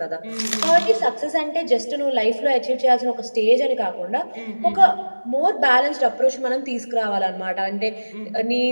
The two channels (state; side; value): inverted; both; correlation -1.00